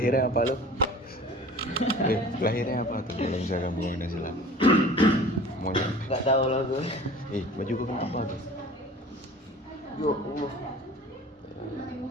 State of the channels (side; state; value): both; normal; correlation 0.43